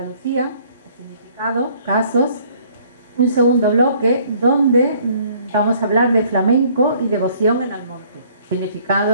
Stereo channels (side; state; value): both; inverted; correlation -0.59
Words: significado, casos. Un segundo bloque donde vamos a hablar de flamenco y devoción en Almonte,